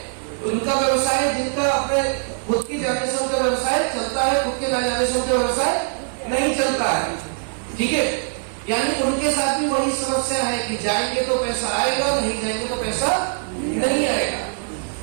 उनका व्यवसाय, जिनका अपने खुद की जाने से उनका व्यवसाय चलता है, खुद के न जाने से उनका व्यवसाय नहीं चलता है, ठीक है। यानी उनके साथ भी वही समस्या है कि जाएंगे तो पैसा आएगा, नहीं जाएंगे तो पैसा नहीं आएगा।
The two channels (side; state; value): left; silent; 58 dB below the other